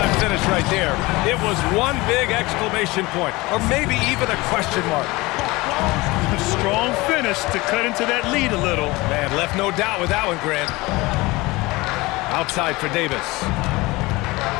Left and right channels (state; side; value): quieter; right; 21.9 dB